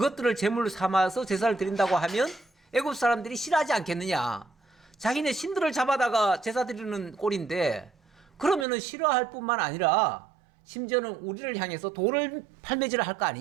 제물로 삼아서 제사를 드린다고 하면 애굽 사람들이 싫어하지 않겠느냐? 자기네 신들을 잡아다가 제사 드리는 꼴인데 그러면은 싫어할 뿐만 아니라 심지어는 우리를 향해서 돌을 팔매질을 할 거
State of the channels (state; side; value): drops out; left; at 8.7 s